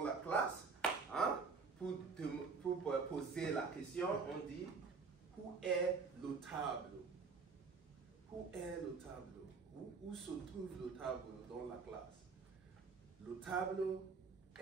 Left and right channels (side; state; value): left; quieter; 4.9 dB